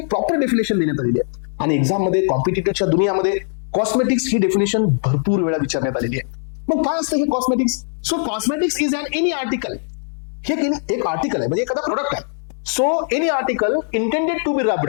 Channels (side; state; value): right; silent; digital silence